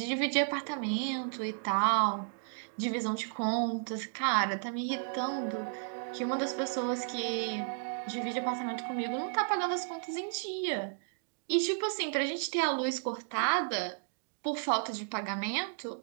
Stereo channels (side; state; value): left; silent; digital silence